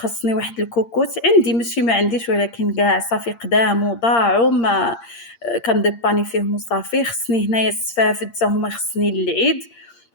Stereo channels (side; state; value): right; late; 8.7 ms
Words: واحد الكوكوت عندي، ماشي ما عنديش، ولكن كاع صافي قدام وضاعوا ما كنديباني فيهم وصافي. خصني هنايا السفافد حتى هما خصني للعيد.